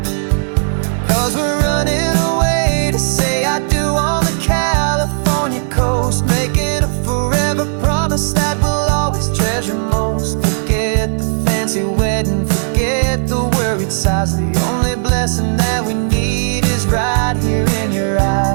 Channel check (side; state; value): left; silent; digital silence